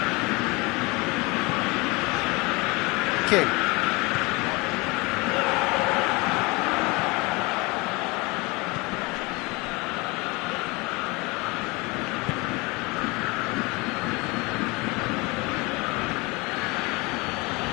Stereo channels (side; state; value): right; quieter; 25.5 dB